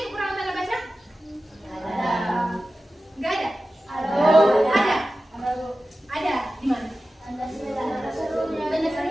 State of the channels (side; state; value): both; normal; correlation 0.94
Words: kekurangan tanda baca? Enggak ada? Ada. Ada. Di mana? Tanda